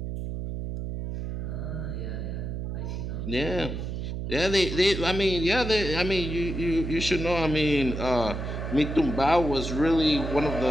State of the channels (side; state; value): right; noise; hum, 5 dB below the sound